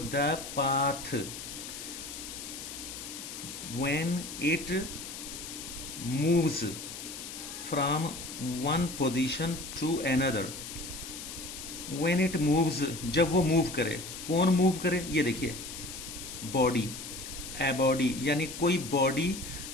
path when it moves from one position to another. When it moves, जब वो मूव करे। कौन मूव करे? ये देखिए, बॉडी, ए बॉडी यानी कोई बॉडी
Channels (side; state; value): left; noise; hiss, 9 dB below the sound